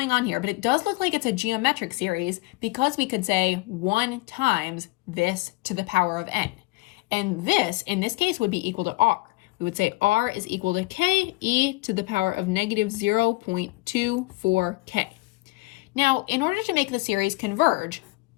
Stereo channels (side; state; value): right; quieter; 22.0 dB